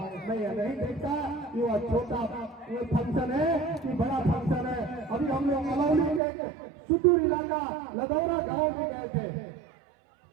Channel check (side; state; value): left; drops out; at 6.2 s